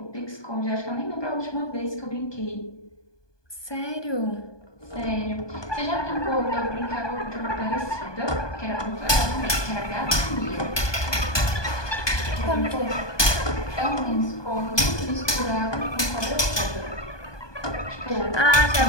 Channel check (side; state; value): right; late; 1.2 ms